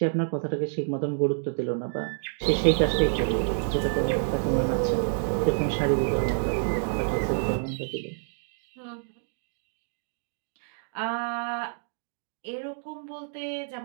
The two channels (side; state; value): left; silent; digital silence